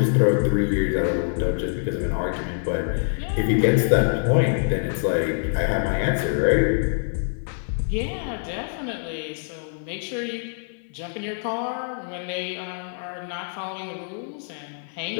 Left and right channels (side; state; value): right; silent; 62 dB below the other